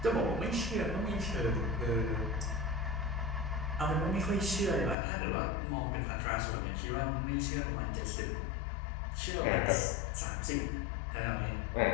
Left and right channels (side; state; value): right; drops out; at 5.0 s